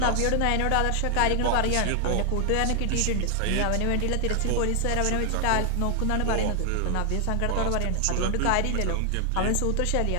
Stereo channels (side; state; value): both; different; correlation 0.00